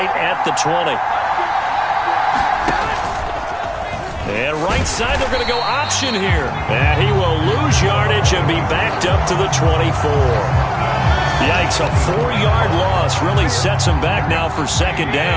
at the 20. And right side, they're going to go option here. And he will lose yardage and be backed up to the 24. Yikes, a 4-yard loss really sets him back now for 2nd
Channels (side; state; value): both; identical; correlation 1.00